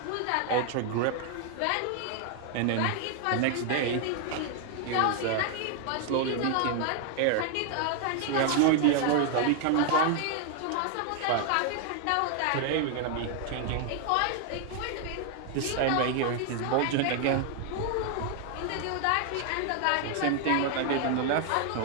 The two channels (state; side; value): different; both; correlation 0.00